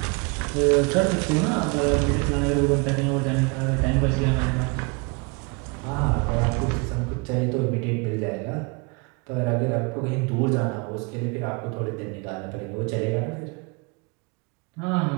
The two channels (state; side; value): quieter; left; 30.9 dB